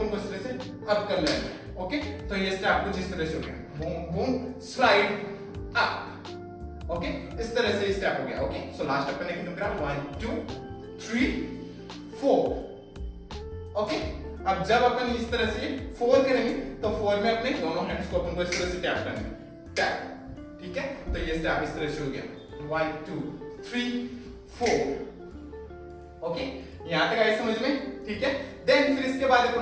को इस तरह से अप करना है। ओके, तो ये स्टेप कुछ इस तरह से हो गया, boom boom slide up. Okay, इस तरह से स्टेप हो गया। ओके, सो लास्ट अपन ने खत्म करा 1 2 3 4। ओके, अब जब अपन इस तरह से 4 करेंगे, तो 4 में अपने दोनों हैंड्स को अपन को इस तरह से टैप करना है, टैप, ठीक है। तो ये स्टेप इस तरह से हो गया 1 2 3 4। ओके, यहां तक आए समझ में, ठीक है। देन फिर इसके बाद अपन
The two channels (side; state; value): both; identical; correlation 1.00